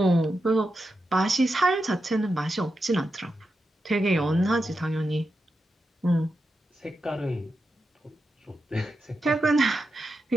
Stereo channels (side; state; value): both; normal; correlation 0.88